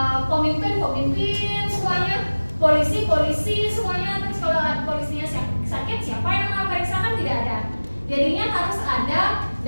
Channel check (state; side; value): inverted; both; correlation -1.00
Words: pemimpin semuanya, polisi semuanya. Terus kalau polisinya sakit, siapa yang mau periksa? Kan tidak ada. Jadinya harus ada